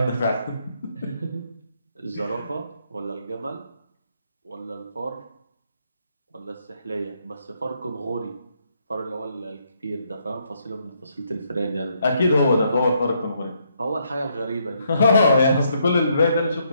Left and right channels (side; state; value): both; inverted; correlation -0.74